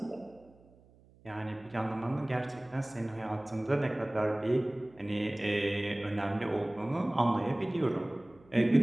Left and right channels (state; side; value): noise; right; hum, 27 dB below the sound